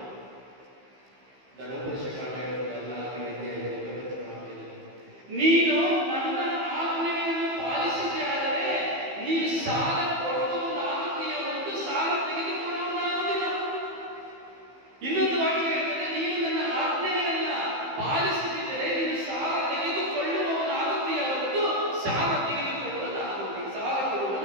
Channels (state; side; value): late; left; 15 ms